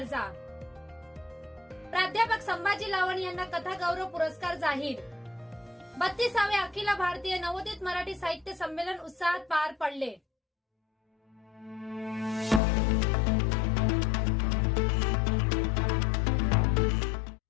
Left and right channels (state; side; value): drops out; right; at 12.6 s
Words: प्राध्यापक संभाजी लावण यांना कथा गौरव पुरस्कार जाहीर। 32वे अखिल भारतीय नवोदित मराठी साहित्य संमेलन उत्साहात पार पडले।